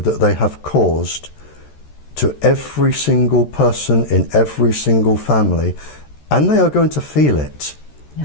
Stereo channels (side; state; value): right; late; 13 ms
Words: they have caused to every single person in every single family, and they are going to feel it,